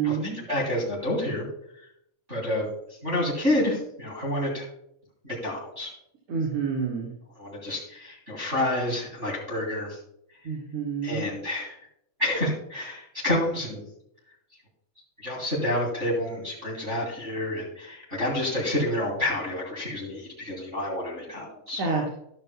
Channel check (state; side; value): late; left; 3.5 ms